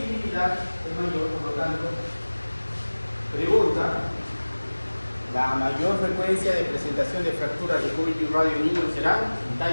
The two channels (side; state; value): both; inverted; correlation -1.00